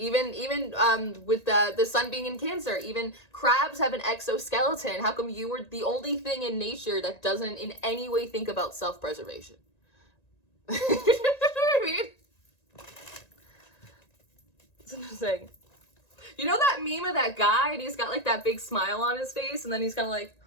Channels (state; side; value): late; right; 1.9 ms